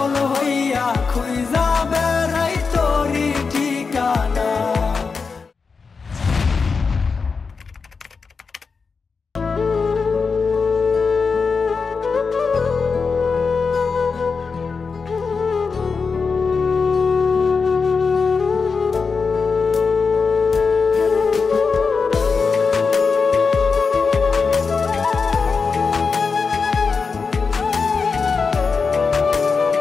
হইয়া খুঁজা বেড়াই তোরি ঠিকানা।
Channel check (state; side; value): quieter; right; 5.0 dB